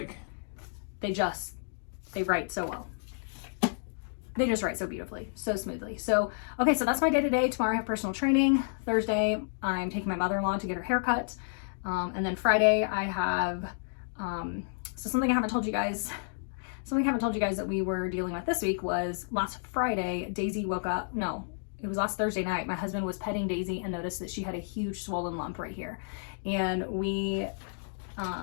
They write so well. They just write so beautifully, so smoothly. So, okay, so that's my day today. Tomorrow I have personal training. Thursday, I'm taking my mother-in-law to get her hair cut. And then Friday I have, so something I haven't told you guys. something I haven't told you guys that we were dealing with this week was last Friday, Daisy woke up, no, it was last Thursday night. My husband was petting Daisy and noticed that she had a huge swollen lump right here. And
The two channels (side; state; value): right; silent; digital silence